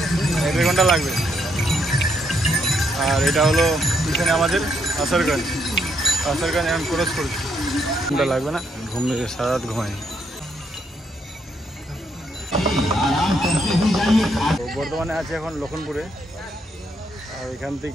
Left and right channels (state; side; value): normal; both; correlation 0.75